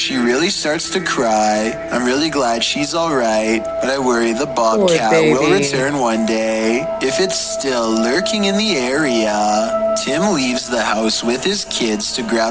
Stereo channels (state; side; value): identical; both; correlation 1.00